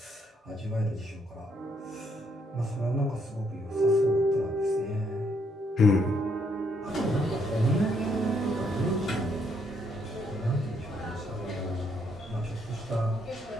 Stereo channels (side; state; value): both; normal; correlation 0.72